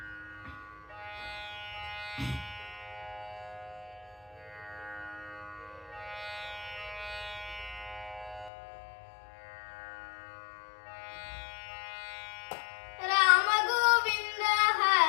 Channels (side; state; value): right; drops out; at 8.5 s